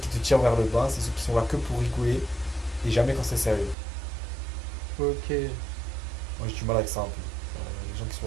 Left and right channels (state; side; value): drops out; left; at 3.8 s